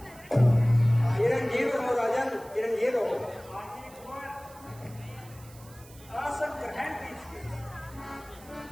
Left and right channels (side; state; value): right; noise; hiss, 22 dB below the sound